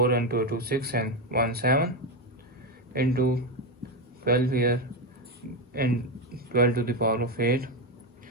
2 6 and 1 7 into 12 here and 12 to the power of 8.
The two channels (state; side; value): normal; both; correlation 0.11